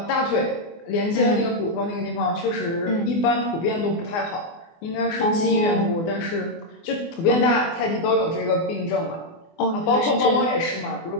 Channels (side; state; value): right; late; 24 ms